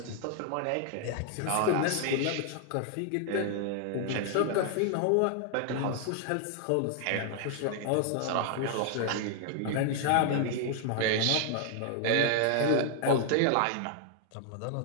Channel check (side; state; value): both; different; correlation 0.00